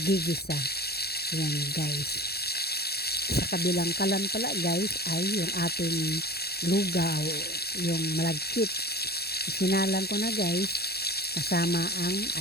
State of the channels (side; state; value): right; late; 0.46 ms